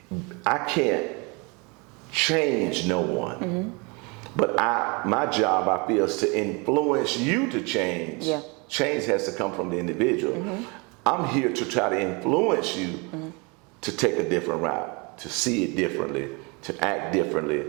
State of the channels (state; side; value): quieter; left; 29.7 dB